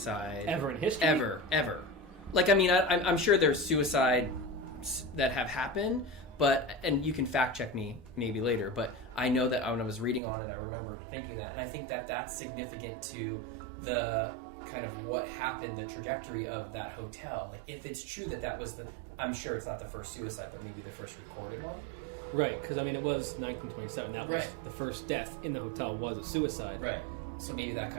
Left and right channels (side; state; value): left; drops out; at 10.2 s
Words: ever in history. Ever. Like, I'm sure there's suicides that have happened, and you can fact check me maybe later, but I know that when I was reading on it, I remember thinking that, and I think that that's significant to the kind of what happened, the trajectory of that hotel. Like, if it's true that was I'm sure it's not the first suicide, but maybe the first recorded one. Right, because, I mean, it was 1927. That was the first death in the hotel was a suicide. Right. So maybe that